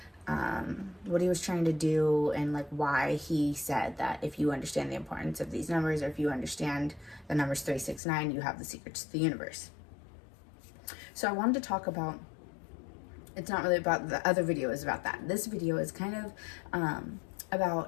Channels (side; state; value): right; drops out; at 8.0 s